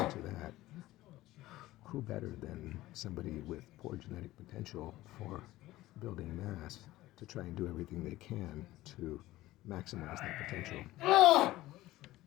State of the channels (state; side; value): quieter; right; 16.7 dB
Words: that, who better than somebody with poor genetic potential for building mass to try and do everything they can to maximize that potential.